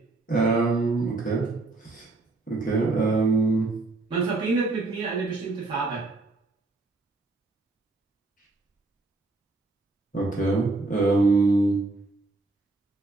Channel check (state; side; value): quieter; left; 3.2 dB